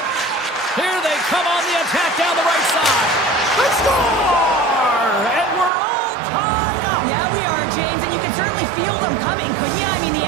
Here they come on the attack down the right side. They score! And we're all tied up. Yeah, we are, James, and you can certainly feel them coming, couldn't you? I mean, the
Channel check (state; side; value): drops out; left; at 5.7 s